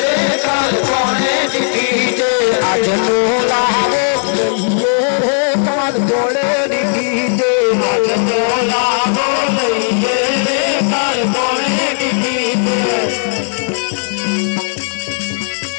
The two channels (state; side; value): silent; right; digital silence